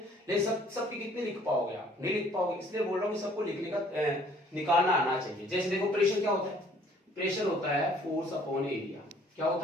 लेकिन सबकी कितने लिख पाओगे आप? नहीं लिख पाओगे, इसलिए बोल रहा हूँ कि सबको लिखने का निकालना आना चाहिए। जैसे देखो प्रेशर क्या होता है? प्रेशर होता है फोर्स अपॉन एरिया। क्या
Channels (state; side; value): normal; both; correlation 0.58